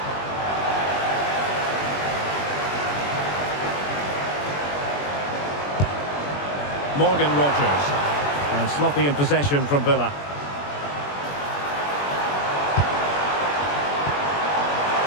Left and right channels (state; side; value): late; right; 21 ms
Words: Morgan Rogers. And sloppy in possession from Villa.